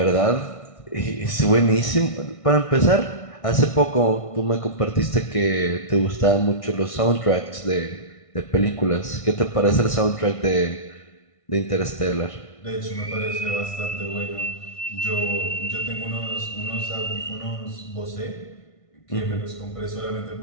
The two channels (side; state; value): right; late; 1.6 ms